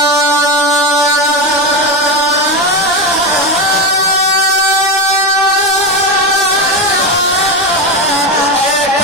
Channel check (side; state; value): both; normal; correlation 0.15